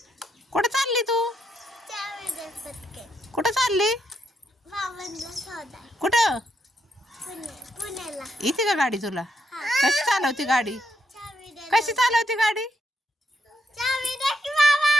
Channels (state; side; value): normal; both; correlation 0.78